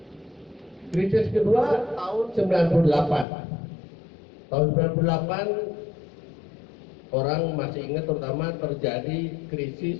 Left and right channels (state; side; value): drops out; right; at 3.2 s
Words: Krisis kedua tahun 98. Tahun 98 orang masih ingat terutama terjadi